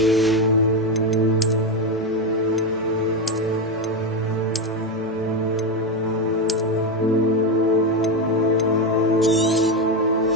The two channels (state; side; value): normal; both; correlation 0.11